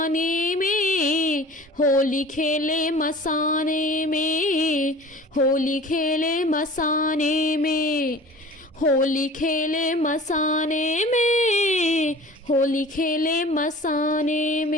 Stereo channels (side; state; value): both; normal; correlation 0.43